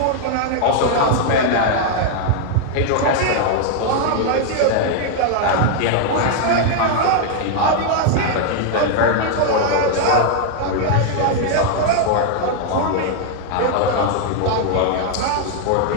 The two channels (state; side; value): different; both; correlation 0.00